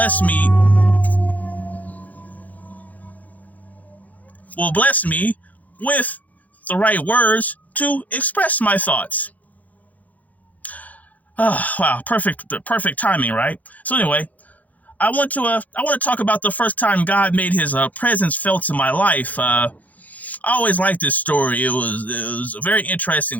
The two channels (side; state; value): right; late; 0.077 ms